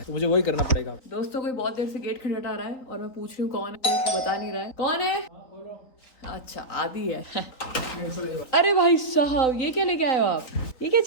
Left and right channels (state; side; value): late; right; 3.7 ms